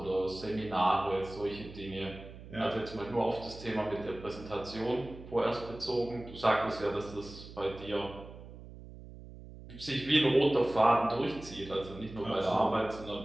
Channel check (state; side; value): noise; right; hum, 15 dB below the sound